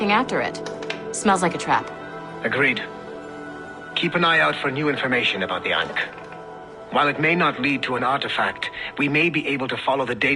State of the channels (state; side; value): identical; both; correlation 1.00